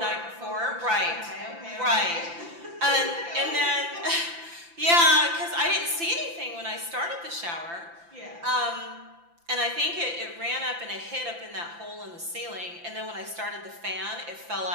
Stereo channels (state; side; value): late; left; 5.9 ms